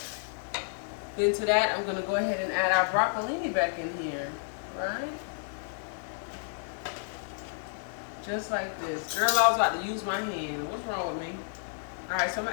Then to that, I'm going to go ahead and add our broccolini back in here, right? Just like this. Girl, I was about to use my hand. What's wrong with me? Alright, so I'm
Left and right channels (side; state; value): right; silent; digital silence